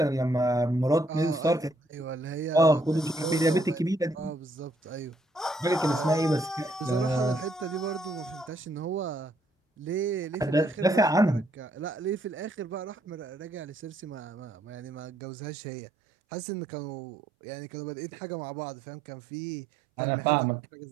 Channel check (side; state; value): left; drops out; at 15.1 s